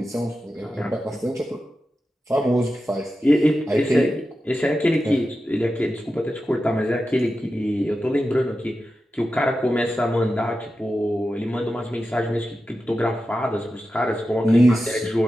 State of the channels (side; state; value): both; normal; correlation 0.91